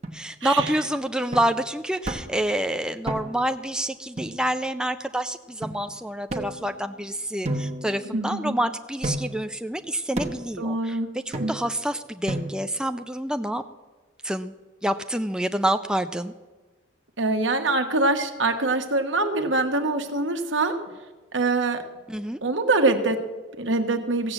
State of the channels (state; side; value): normal; both; correlation 0.43